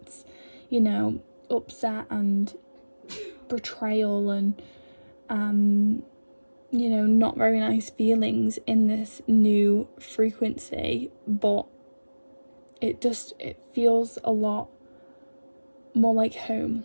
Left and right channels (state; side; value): inverted; both; correlation -1.00